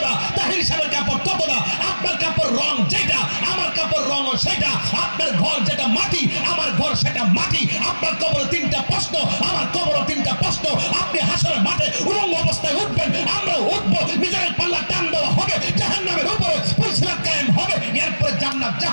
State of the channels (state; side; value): inverted; both; correlation -1.00